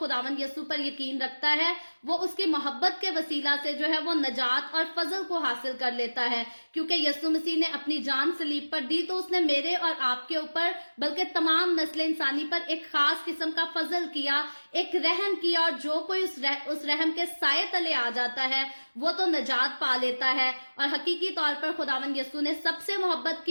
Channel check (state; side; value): inverted; both; correlation -1.00